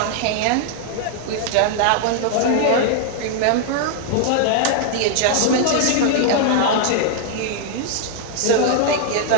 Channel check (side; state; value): both; different; correlation 0.00